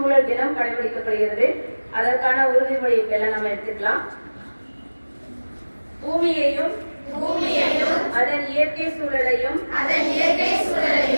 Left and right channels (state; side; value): inverted; both; correlation -1.00